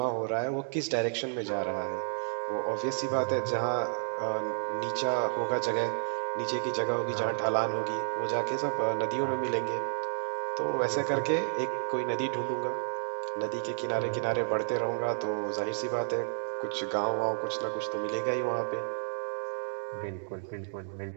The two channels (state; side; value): silent; left; digital silence